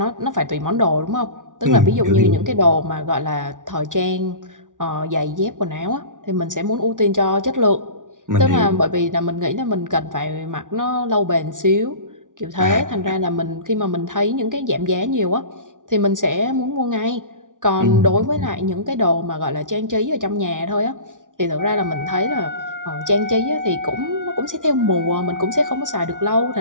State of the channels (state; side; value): late; left; 0.88 ms